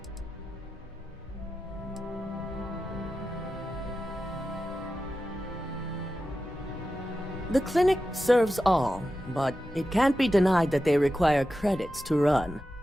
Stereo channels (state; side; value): normal; both; correlation 0.92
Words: The clinic serves all, but it can't be denied that they require credits to run.